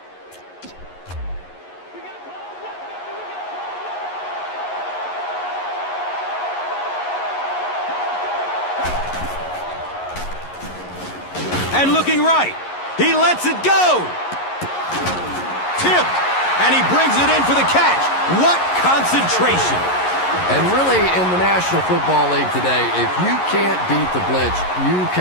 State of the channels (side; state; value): right; late; 11 ms